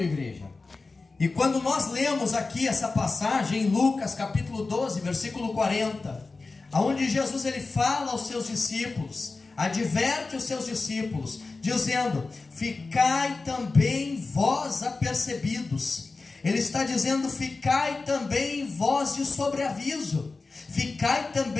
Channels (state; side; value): quieter; right; 3.8 dB